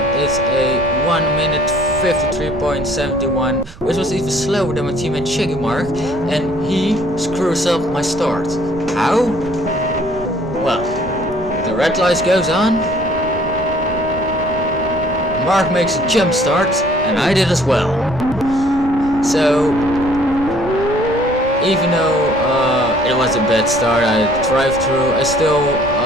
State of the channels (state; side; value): noise; right; rumble, 17 dB below the sound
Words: It's a 1 minute 53.71, which was even slower than my teammate Shaggy Mark, and he screws up my start. How? Well, the red light goes on. Mark makes a jump start, and I did as well. So even though it was a bad start, I drive through, I still